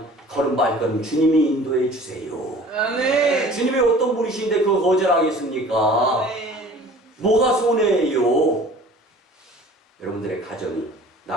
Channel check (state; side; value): normal; both; correlation 0.46